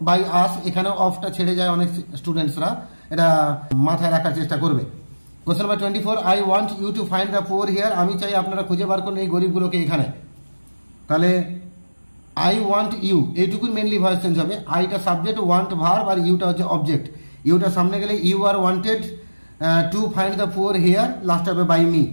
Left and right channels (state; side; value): inverted; both; correlation -1.00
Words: by us. এখানে অফটা ছেড়ে যায় অনেক স্টুডেন্টসরা, এটা মাথায় রাখার চেষ্টা করবে। Question number 24, I want you to find the poor here. আমি চাই আপনারা খুঁজে বার করুন এই গরিবগুলোকে এখানে। তাহলে আই ওয়ান্ট ইউ, এইটুকুই মেনলি ভয়েস চেঞ্জ হবে। আইটা সাবজেক্ট, ওয়ান্ট ভার্ব, আর ইউটা হচ্ছে অবজেক্ট। ইউটা সামনে গেলে you are wanted to find the poor here, last হবে by me.